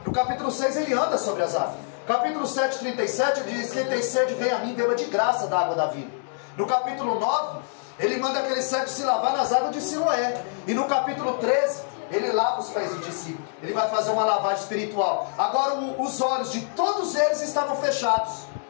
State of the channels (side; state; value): right; silent; digital silence